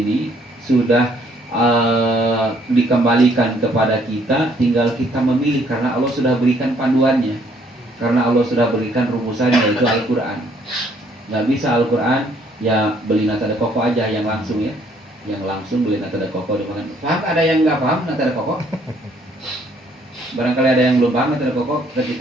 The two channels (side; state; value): both; normal; correlation 0.65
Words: sudah dikembalikan kepada kita, tinggal kita memilih karena Allah sudah berikan panduannya, karena Allah sudah berikan rumusannya, yaitu Al-Quran. Nggak bisa Al-Quran ya beli nata de koko aja yang langsung ya, yang langsung beli nata de koko dimakan. Paham? Ada yang nggak paham nata de koko? Barangkali ada yang belum paham nata de koko